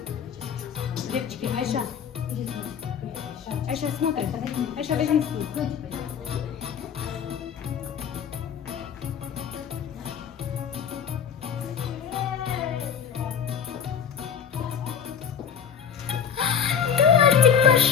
Девочки, Айша. Айша, смотри. Айша, возьми стул.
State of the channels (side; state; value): right; quieter; 7.6 dB